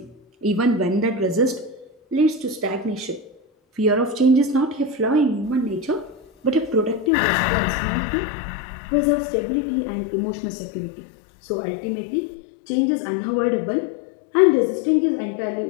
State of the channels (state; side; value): drops out; right; at 7.1 s